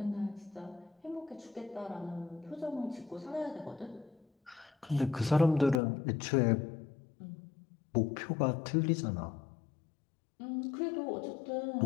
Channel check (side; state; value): right; drops out; at 5.8 s